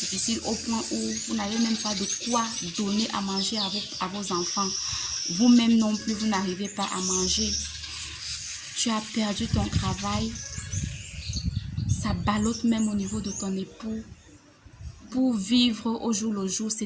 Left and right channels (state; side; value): identical; both; correlation 1.00